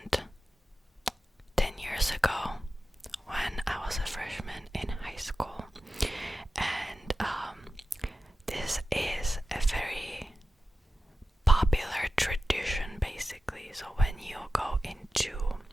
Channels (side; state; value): both; normal; correlation 0.93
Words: 10 years ago when I was a freshman in high school, and this is a very popular tradition basically. So when you go into